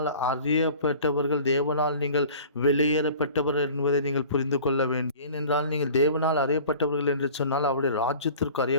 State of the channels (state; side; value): inverted; both; correlation -0.44